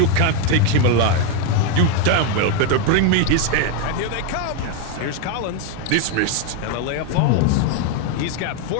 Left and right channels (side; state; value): both; different; correlation 0.01